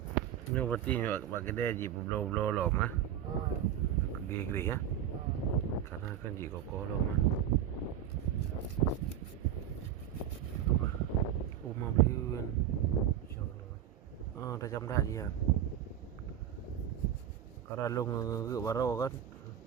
Ini berarti buat kedai je berbelum-belum lom ah. Gede-gede ya. Karena kan je kokoh lom ah. Rumah beli kan. Dah jam dah dia. Kalau long ke baru kan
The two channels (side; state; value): left; quieter; 10.3 dB